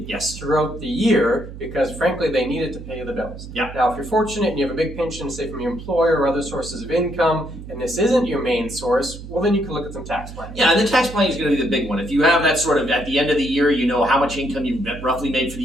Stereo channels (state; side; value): noise; right; hum, 13 dB below the sound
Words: throughout the year because frankly they need it to pay the bills. Now if you're fortunate and you have a big pension, say from your employer or other sources of income, and this isn't your main source, well then you can look at some tax planning. Yeah, and the tax planning is going to be the big one. If you have that sort of, at the end of the year, you know how much income you've roughly made for the